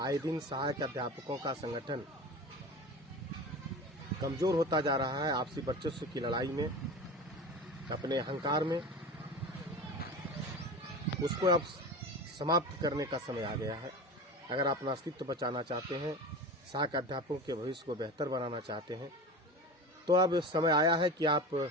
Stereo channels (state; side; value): normal; both; correlation 0.31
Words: आए दिन सहायक अध्यापकों का संगठन कमजोर होता जा रहा है आपसी वर्चस्व की लड़ाई में, अपने अहंकार में, उसको अब समाप्त करने का समय आ गया है। अगर आप अपना अस्तित्व बचाना चाहते हैं, सहायक अध्यापकों के भविष्य को बेहतर बनाना चाहते हैं, तो अब समय आया है कि आप